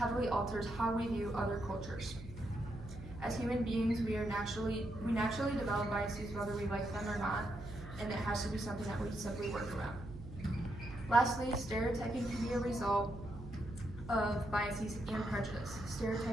alters how we view other cultures. As human beings, we naturally develop biases whether we like them or not, and it has to be something that we simply work around. Lastly, stereotyping can be a result of biases and prejudice.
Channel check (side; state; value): right; noise; hum, 12 dB below the sound